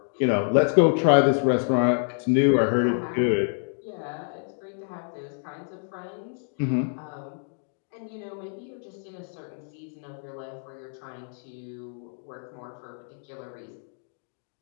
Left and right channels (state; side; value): silent; right; 60 dB below the other